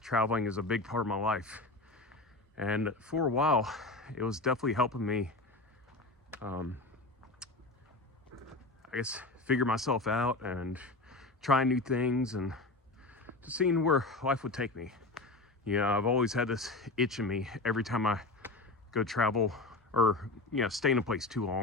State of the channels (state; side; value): quieter; right; 3.1 dB